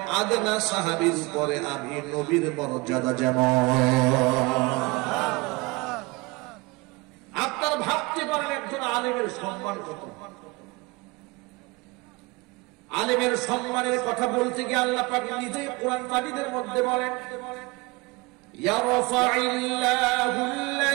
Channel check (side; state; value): left; quieter; 25.1 dB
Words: আদনা সাহাবীর উপরে আমি নবীর মর্যাদা যেমন। আপনারা ভাবতে পারেন একজন আলেমের সম্মান কত। আলেমের সম্মানের কথা বলতে গিয়ে আল্লাহ পাক নিজেই কোরআন মাজিদের মধ্যে বলেন, ইয়ারফাইল্লাহু